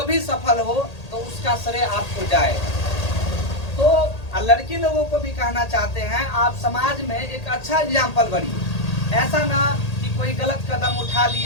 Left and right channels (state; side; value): late; right; 1.8 ms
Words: भी सफल हो तो उसका श्रेय आपको जाए। तो लड़की लोगों को भी कहना चाहते हैं, आप समाज में एक अच्छा एग्जाम्पल बनिए। ऐसा ना कि कोई गलत कदम उठा